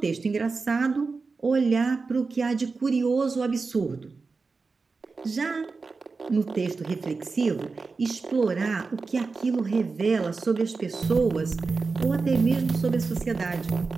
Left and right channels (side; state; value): left; quieter; 4.3 dB